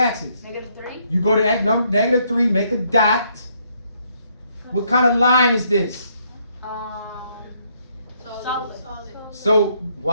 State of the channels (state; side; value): inverted; both; correlation -0.71